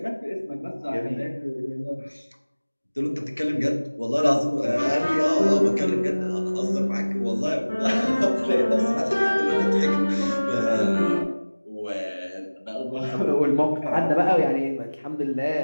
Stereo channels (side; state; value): both; inverted; correlation -1.00